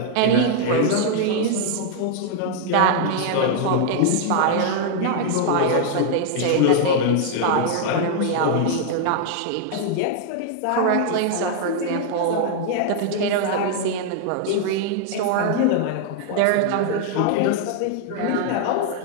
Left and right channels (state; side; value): different; both; correlation 0.00